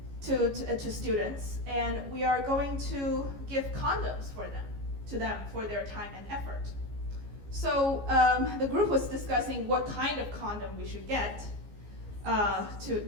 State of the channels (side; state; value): left; late; 15 ms